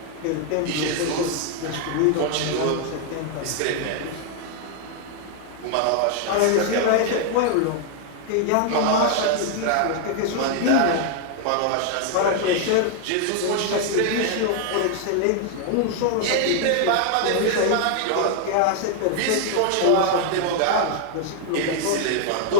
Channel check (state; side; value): different; both; correlation 0.00